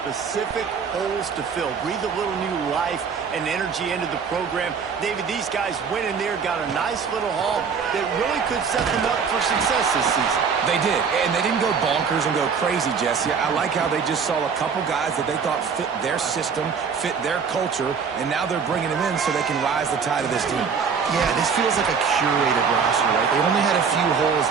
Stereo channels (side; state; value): left; quieter; 6.1 dB